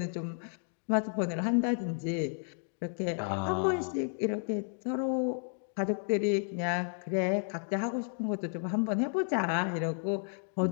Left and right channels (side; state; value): right; silent; 56 dB below the other